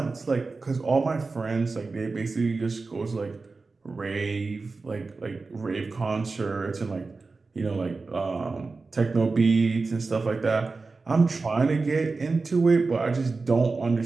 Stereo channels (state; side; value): quieter; left; 4.0 dB